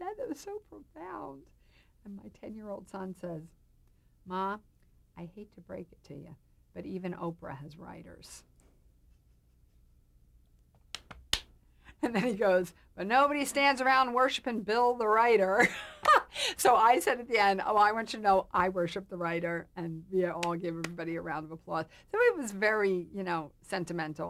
That was so profound. And my 10-year-old son says, Ma, I hate to break it to you, but even Oprah has writers. And then he goes, but nobody stands around worshiping Bill the writer. So I said at the end, oh, I want you to know I worship the writer, and we all give everybody a round of applause. So it was very,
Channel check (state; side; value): identical; both; correlation 1.00